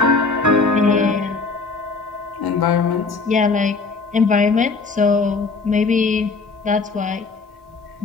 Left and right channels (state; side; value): quieter; right; 4.2 dB